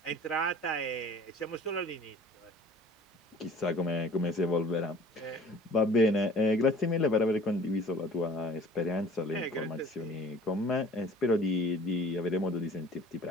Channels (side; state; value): both; normal; correlation 0.48